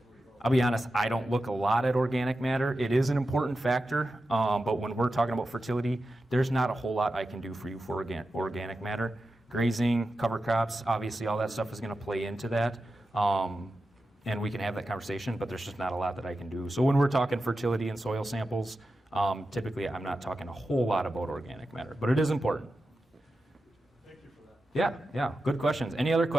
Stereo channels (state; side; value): normal; both; correlation 0.91